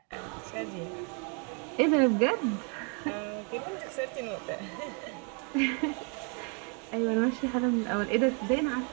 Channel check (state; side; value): quieter; left; 37.5 dB